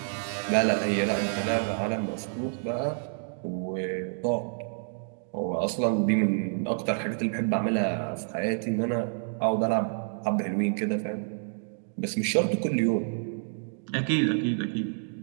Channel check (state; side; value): silent; left; digital silence